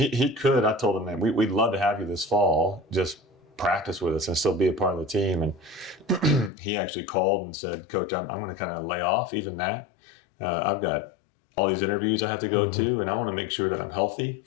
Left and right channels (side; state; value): right; drops out; at 6.5 s